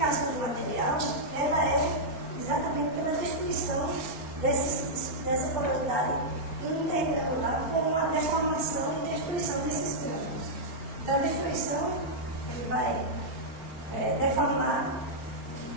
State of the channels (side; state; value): left; late; 4.4 ms